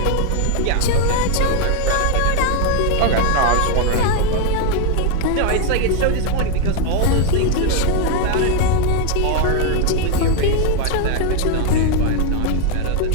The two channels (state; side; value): different; both; correlation 0.01